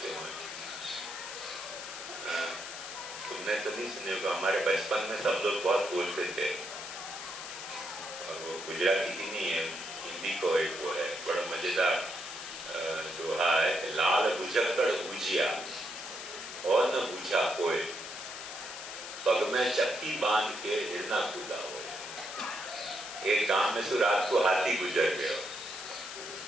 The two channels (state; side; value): noise; left; hiss, 9 dB below the sound